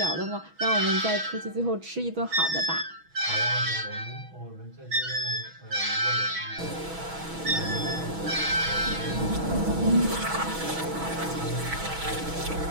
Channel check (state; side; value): late; left; 6.2 ms